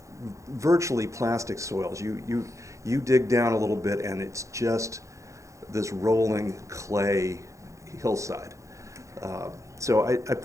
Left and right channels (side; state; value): left; late; 0.15 ms